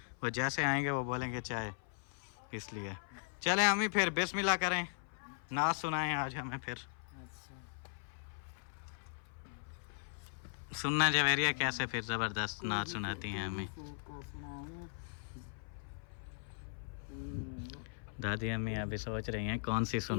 वो जैसे आएंगे वो बोलेंगे चाय, इसलिए चले हमें फिर बिस्मिल्लाह करें, नात सुनाएं आज हमें फिर। अच्छा सुनना जवेरिया कैसे फिर ज़बरदस्त नात सुनाती हैं हमें दादी अम्मी। अभी सोच रही हैं कौन सी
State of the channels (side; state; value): right; silent; 52 dB below the other